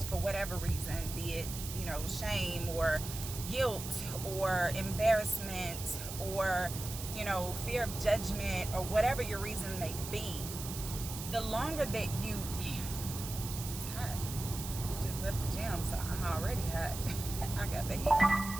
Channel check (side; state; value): right; noise; hiss, 8 dB below the sound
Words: for whatever reason, be it shame or guilt or embarrassment or fear of judgment or whatever your reason may be, the longer that you it's hot. Just left the gym, so I'm already hot. I got the heat